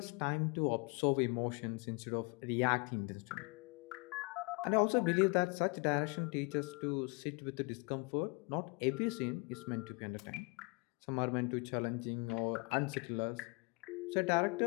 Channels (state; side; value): quieter; right; 30.4 dB